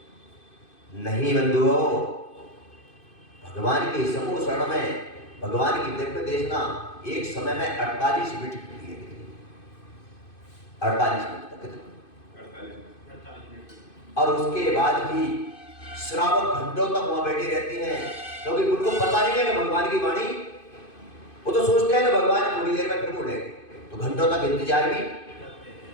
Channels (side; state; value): right; late; 2.5 ms